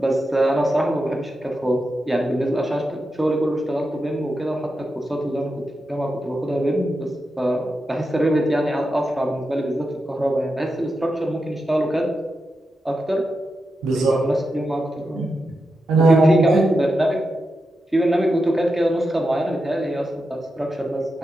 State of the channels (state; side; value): normal; both; correlation 0.88